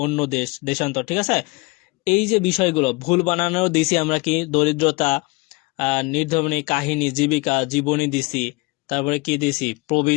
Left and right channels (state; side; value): quieter; right; 26.1 dB